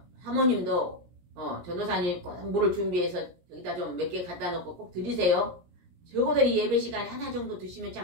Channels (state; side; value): late; left; 17 ms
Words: 사모님도 전도사님이 꼭 물을 준비해서 여기다 좀 몇 개 갖다 놓고 꼭 드리세요. 적어도 이 예배 시간에 하나 정도 드시면